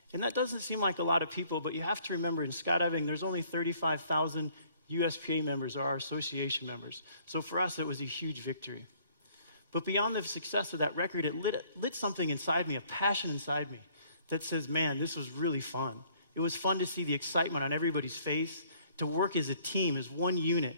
And that doesn't seem like a lot of people, but you have to remember in skydiving, there's only 35,000 USPA members, or our association members. So for us, it was a huge victory. But beyond the success of that record, it lit something inside me, a passion inside me that says, man, this was really fun. It was fun to see the excitement on everybody's face, to work as a team, as one unit,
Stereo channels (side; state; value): both; inverted; correlation -0.60